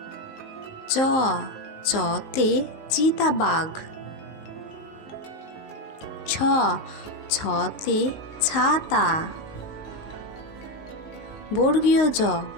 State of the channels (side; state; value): right; late; 19 ms